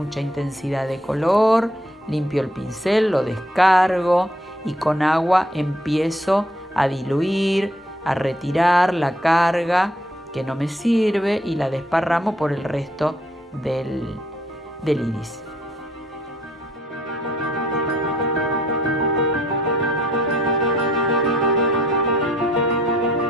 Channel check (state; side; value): normal; both; correlation 0.66